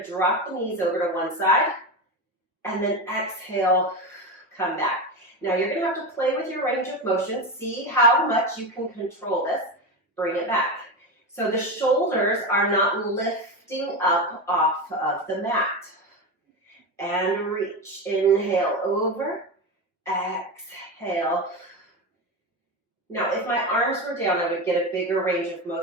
drop the knees over to one side, and then exhale, come back. Now you're gonna have to play with your range of motion. See how much you can control this. Bring it back. So the shoulders are not lifting up off of the mat. And reach. Inhale over. Exhale. Now, if my arms were down, I would get a bigger range of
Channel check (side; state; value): both; normal; correlation 0.18